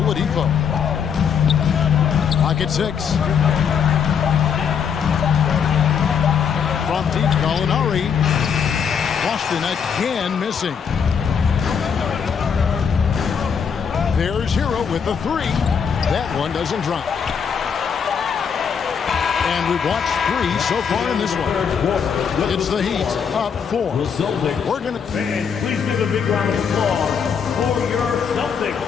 Clock at 6. From deep, Gallinari. Boston again missing. There's Hero with the 3. That one doesn't drop. And we've watched 3 so far in this one. It's the Heat up 4. We're going to... Please give a big round of applause for your Celtics.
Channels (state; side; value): quieter; right; 6.9 dB